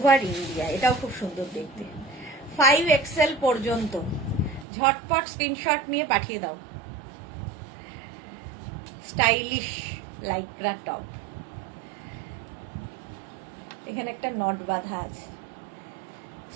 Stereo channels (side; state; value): left; drops out; at 4.7 s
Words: ইন্ডিয়া। এটাও খুব সুন্দর দেখতে, 5XL পর্যন্ত। ঝটপট স্ক্রিনশট নিয়ে পাঠিয়ে দাও। স্টাইলিশ লাইক্রা টপ, এখানে একটা নট বাঁধা আছে।